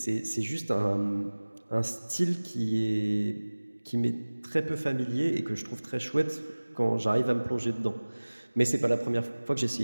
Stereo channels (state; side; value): inverted; both; correlation -1.00